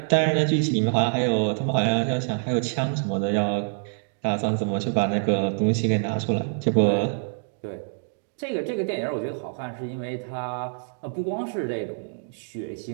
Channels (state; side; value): silent; left; digital silence